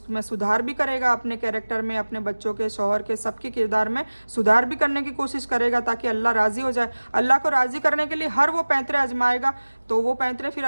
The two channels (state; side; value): inverted; both; correlation -1.00